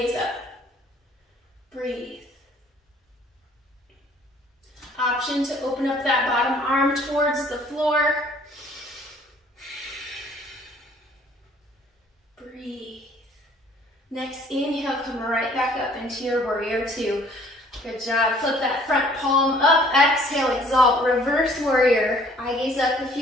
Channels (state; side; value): normal; both; correlation 0.57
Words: up. Breathe. Option to open up that bottom arm towards the floor. Breathe. Next inhale, come right back up into your warrior two. Good job. Flip that front palm up. Exhale, exalt, reverse warrior. Eye gaze up if